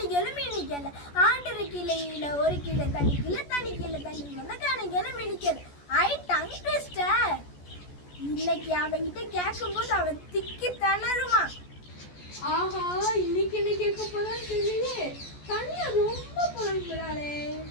மீனிக்கல. ஆட்டரு கிள்ளையில 1 கிலோ தண்ணி கிலோ தண்ணி கிலோ தண்ணில் வந்த காணிகள் மீனிக்கல. ஐ டங் ட்விஸ்டர். இன்னைக்கு அவன்கிட்ட கேட்கும்போது அவன் திக்கி தளருவான். ஆஹா, இன்னைக்கு என்ன கேட்க போறான்னு தெரியலையே. தனியா ரொம்ப புலம்புறாளே.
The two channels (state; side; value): late; right; 14 ms